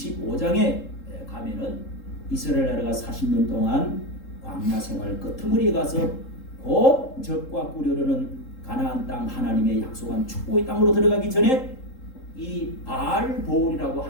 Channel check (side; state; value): right; late; 3.8 ms